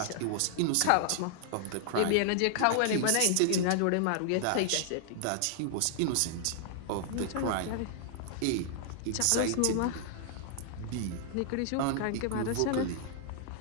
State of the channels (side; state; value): both; different; correlation -0.01